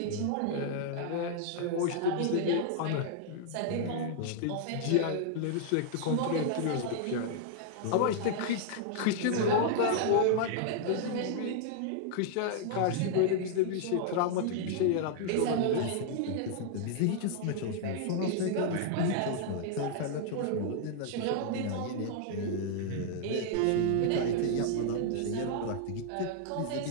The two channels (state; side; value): different; both; correlation -0.01